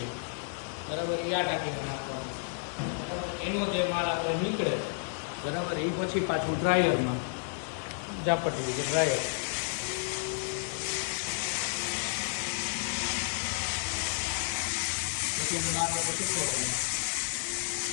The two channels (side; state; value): right; silent; digital silence